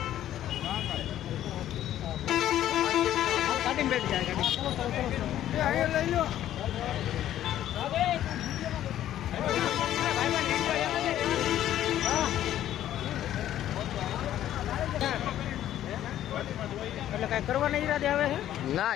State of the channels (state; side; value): quieter; right; 12.1 dB